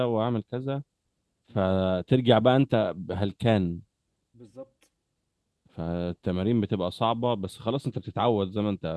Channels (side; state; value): both; identical; correlation 1.00